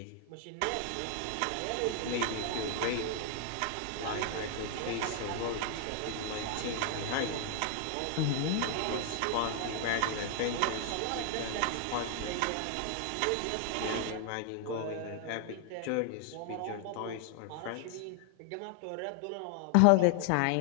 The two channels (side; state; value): both; different; correlation 0.00